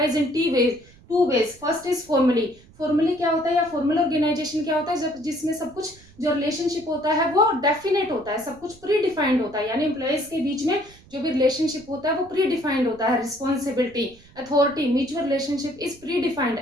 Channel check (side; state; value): right; noise; rumble, 25 dB below the sound